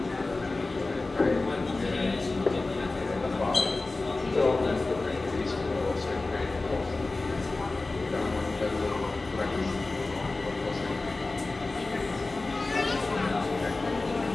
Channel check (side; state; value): right; quieter; 3.3 dB